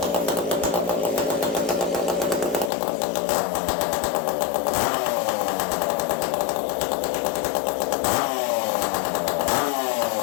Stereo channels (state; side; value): drops out; right; at 2.7 s